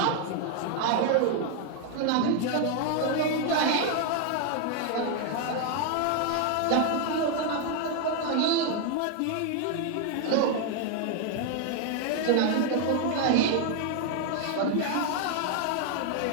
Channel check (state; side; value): different; both; correlation 0.01